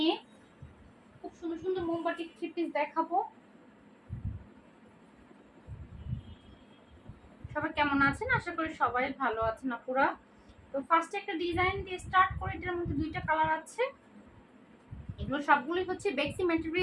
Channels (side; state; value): both; identical; correlation 1.00